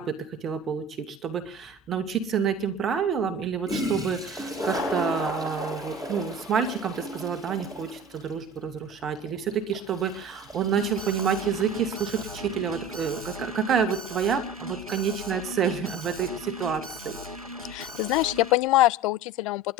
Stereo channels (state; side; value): normal; both; correlation 0.37